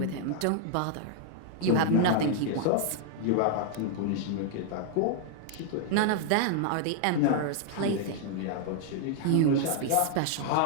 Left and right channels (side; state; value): both; different; correlation 0.00